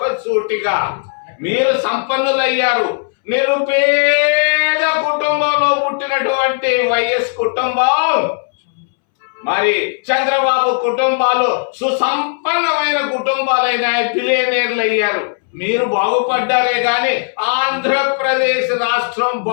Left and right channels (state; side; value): silent; right; 67 dB below the other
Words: మీరు సంపన్నులయ్యారు. నిరుపేద కుటుంబంలో పుట్టినటువంటి వైఎస్ కుటుంబం, మరి చంద్రబాబు కుటుంబాలు సుసంపన్నమైన కుటుంబాలైన బిలియనీర్లు అయ్యారు. మీరు బాగుపడ్డారే గాని ఆంధ్రప్రదేశ్ రాష్ట్రం